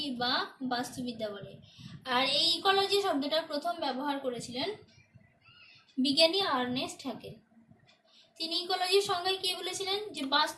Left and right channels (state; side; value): identical; both; correlation 1.00